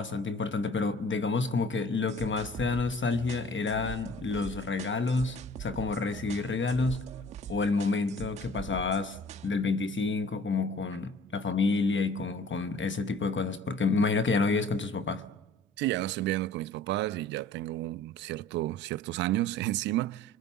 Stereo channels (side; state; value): both; normal; correlation 0.49